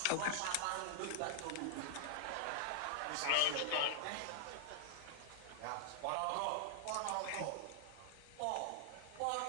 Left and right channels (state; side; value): different; both; correlation -0.01